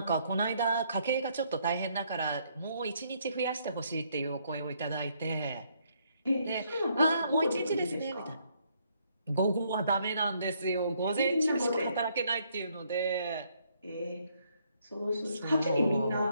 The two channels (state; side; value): inverted; both; correlation -0.70